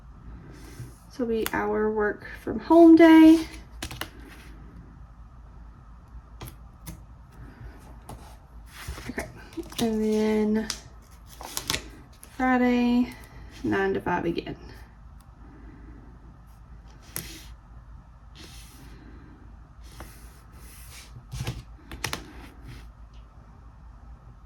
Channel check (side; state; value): both; identical; correlation 1.00